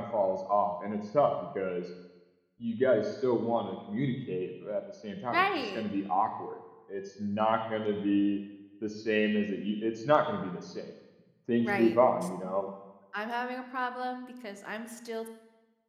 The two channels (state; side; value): identical; both; correlation 1.00